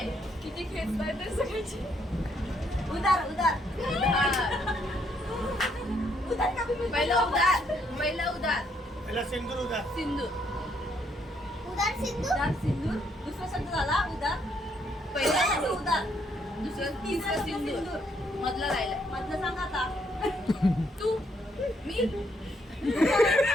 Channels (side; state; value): both; normal; correlation 0.72